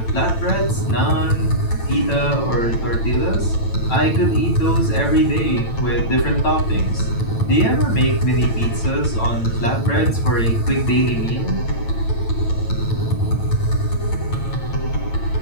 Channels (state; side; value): late; right; 8.9 ms